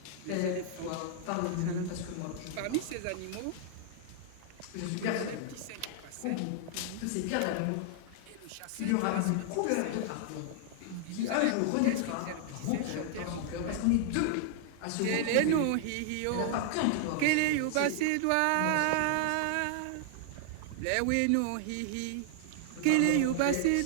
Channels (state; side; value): different; both; correlation 0.00